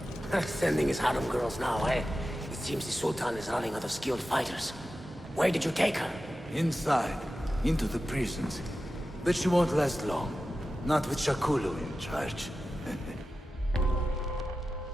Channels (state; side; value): normal; both; correlation 0.93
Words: Sending his harem girls now, eh? It seems the Sultan is running out of skilled fighters. Where did you take her? Inside, into the prisons. But she won't last long. Not with Shakulu in charge.